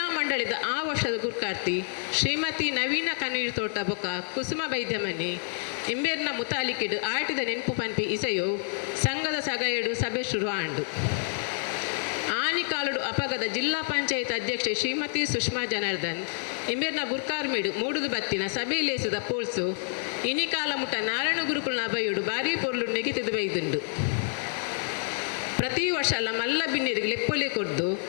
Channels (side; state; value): right; silent; 59 dB below the other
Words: ಮಂಡಳಿದ ಆ ವರ್ಷದ ಗುರ್ಕಾರ್ತಿ ಶ್ರೀಮತಿ ನವೀನ ಕಣ್ಣೀರು ತೋಟ ಬೊಕ್ಕ ಕುಸುಮ ಬೈದ್ಯಮನೆ ಇಂಬೇರ್ನ ಮುತಾಲಿಕಿಡು ಆಟಿದ ನೆನಪು ಪನ್ಪಿ ಇಸೆಯೋ ಸಂಘದ ಸಗಯಡು ಸಭೆ ಶುರು ಆಂಡು. ಆನಿಕಾಲುಡು ಅಪಗದ ಜಿಲ್ಲಾ ಪಂಚಾಯತ್ ಅಧ್ಯಕ್ಷೆ ಶ್ರೀಮತಿ ಸುಷ್ಮಾ ಜನಾರ್ದನ್ ಇಂಬೇರ್ನ ಗುರ್ಕಾರ್ಮೇಡು ಮೂಡುದು ಬತ್ತಿನ ಸಭೆ ಲೇಸಿದ ಪೋಲ್ಸು ಇನಿಕಾಲ ಮುಟ್ಟ ನಾರಾಯಣ ಗುರುಕುಲ್ನ ಬೈಯುಡು ಭಾರೀ ಪೊರ್ಲು ನೆಗೆತಿದು ಬೈದುಂಡು. ಪ್ರತಿ ವರ್ಷ ಅಲ್ಲ ಮಲ್ಲ ಬಿನ್ನಿರಿಗೆ ಲೆಪ್ಪೊಲೆ ಕೊಡ್ದು